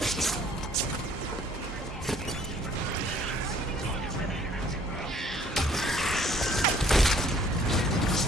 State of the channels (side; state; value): both; normal; correlation 0.58